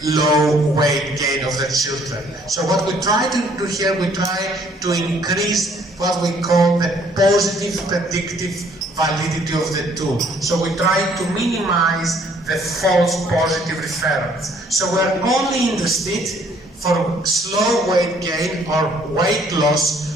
low weight gain of their children. So what we try to do here, we try to increase what we call the positive predictive validity of the tool. So we try to minimize the false positive referrals. So we're only interested for slow weight gain or weight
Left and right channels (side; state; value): both; normal; correlation 0.62